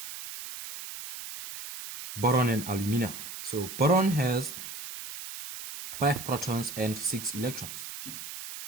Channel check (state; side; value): noise; right; hiss, 9 dB below the sound